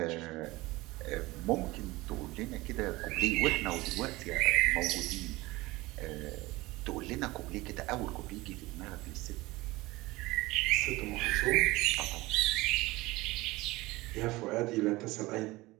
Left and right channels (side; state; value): left; quieter; 20.5 dB